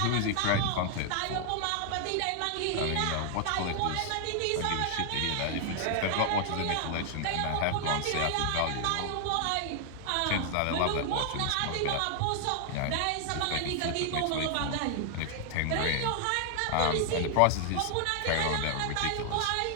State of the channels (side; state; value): both; different; correlation 0.00